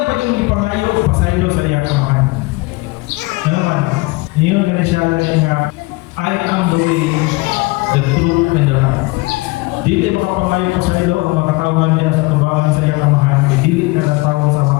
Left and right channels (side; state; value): right; quieter; 23.8 dB